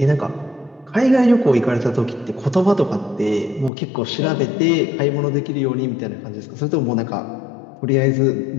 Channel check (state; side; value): drops out; right; at 3.7 s